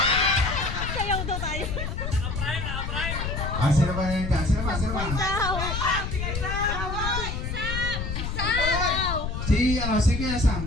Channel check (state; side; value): noise; left; rumble, 3 dB below the sound